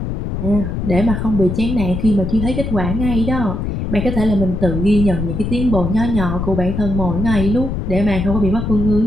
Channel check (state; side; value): noise; left; rumble, 3 dB below the sound